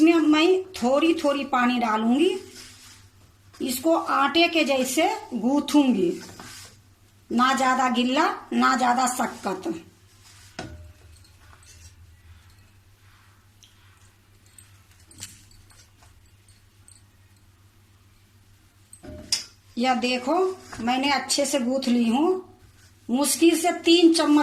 मैं थोड़ी थोड़ी पानी डालूंगी। इसको आटे के जैसे गूंथूंगी, ना ज्यादा गिल्ला ना ज्यादा सख्त। यह देखो मैंने अच्छे से गूंथ ली हूँ। मुश्किल से 3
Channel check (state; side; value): identical; both; correlation 1.00